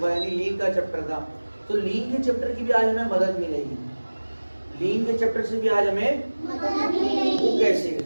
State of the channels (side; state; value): both; inverted; correlation -1.00